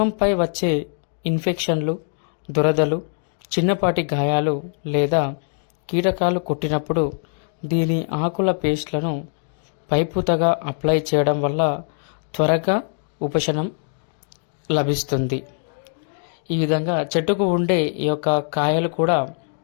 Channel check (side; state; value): right; silent; 55 dB below the other